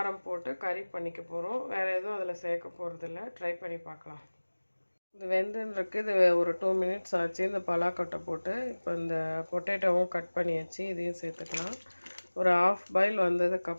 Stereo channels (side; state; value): both; inverted; correlation -1.00